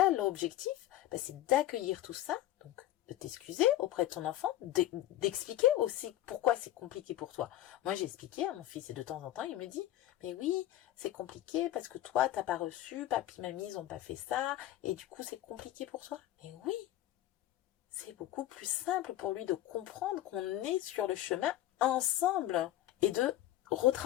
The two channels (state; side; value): quieter; right; 13.9 dB